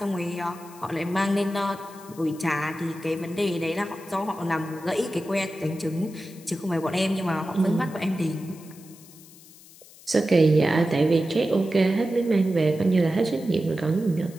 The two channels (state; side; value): noise; left; hiss, 22 dB below the sound